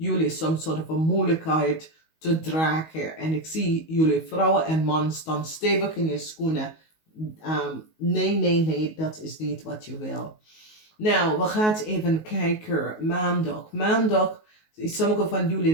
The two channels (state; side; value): late; right; 19 ms